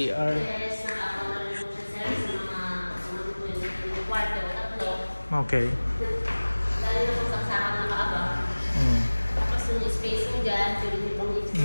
Yes, nakakamali po siya sir sa mga kwarto, tatlo. Okay. Dahil na po saksakan na kaaba. Tapos yung space mo dyan, pwede nyo pang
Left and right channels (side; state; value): both; inverted; correlation -1.00